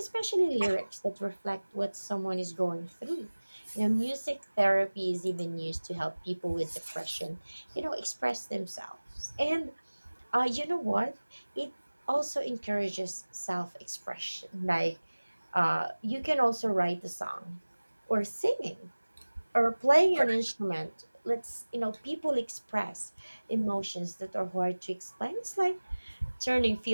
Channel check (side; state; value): both; inverted; correlation -1.00